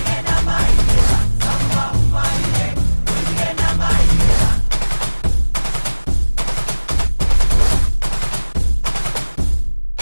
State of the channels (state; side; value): inverted; both; correlation -1.00